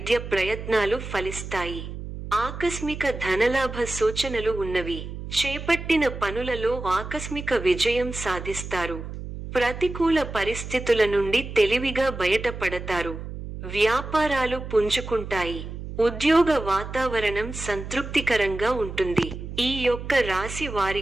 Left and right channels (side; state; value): right; noise; hum, 9 dB below the sound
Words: ప్రయత్నాలు ఫలిస్తాయి. ఆకస్మిక ధనలాభ సూచనలు ఉన్నవి. చేపట్టిన పనులలో ఆకస్మిక విజయం సాధిస్తారు. ప్రతికూల పరిస్థితుల నుండి తెలివిగా బయటపడతారు. వ్యాపారాలు పుంజుకుంటాయి. ఉద్యోగ వాతావరణం సంతృప్తికరంగా ఉంటుంది. ఈ యొక్క రాశి